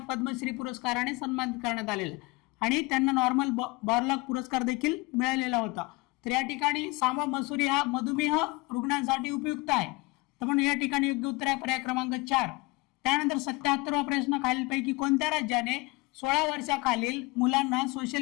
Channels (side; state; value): right; quieter; 24.9 dB